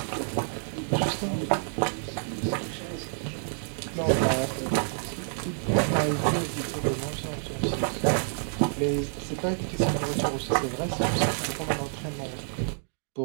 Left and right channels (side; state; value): left; silent; digital silence